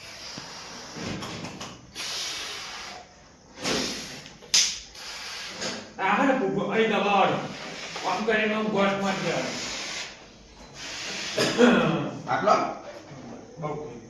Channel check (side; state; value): both; identical; correlation 1.00